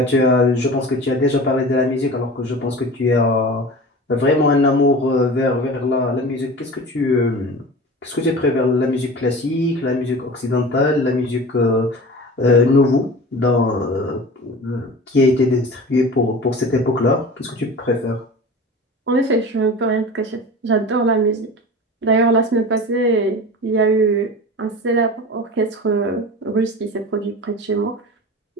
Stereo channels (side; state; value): both; normal; correlation 0.35